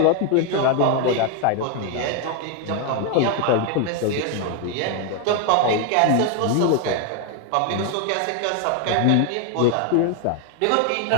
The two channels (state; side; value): different; both; correlation 0.01